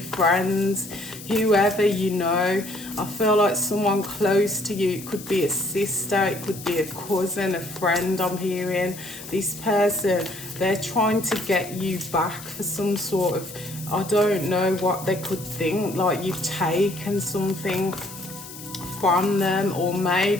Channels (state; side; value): noise; left; hiss, 14 dB below the sound